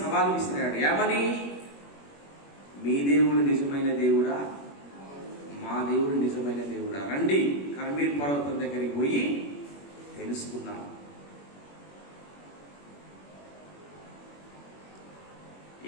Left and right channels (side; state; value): right; late; 21 ms